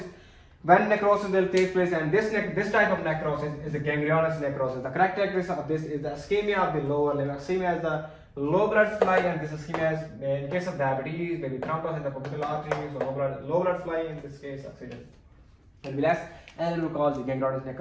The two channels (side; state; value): both; identical; correlation 1.00